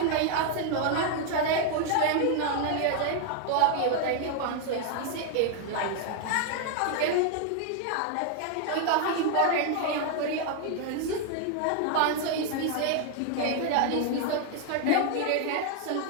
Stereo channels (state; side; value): different; both; correlation 0.00